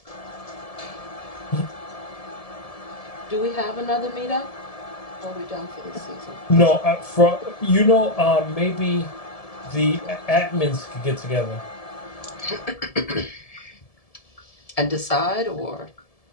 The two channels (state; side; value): late; right; 1.7 ms